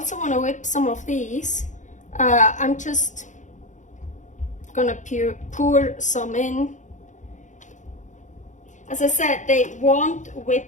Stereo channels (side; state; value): right; late; 0.36 ms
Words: want to whip some of these. I'm just gonna pour some in. As I said, they won't